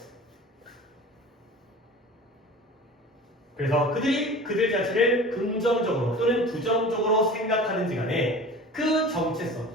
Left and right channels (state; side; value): normal; both; correlation 0.39